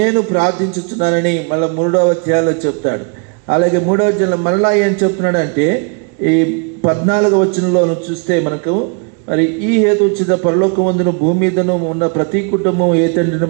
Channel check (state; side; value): quieter; left; 35.9 dB